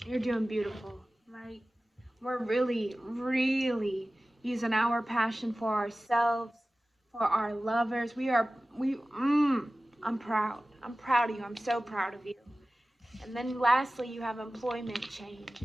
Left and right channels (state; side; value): normal; both; correlation 0.97